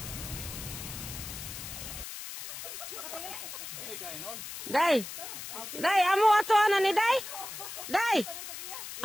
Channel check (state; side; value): noise; left; hiss, 9 dB below the sound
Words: Day. Day, amo ato ana ni Day. Day.